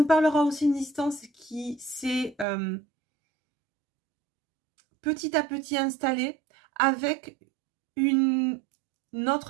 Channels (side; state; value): left; drops out; at 2.5 s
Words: parlera aussi d'une distance qui s'est petit à petit installée avec une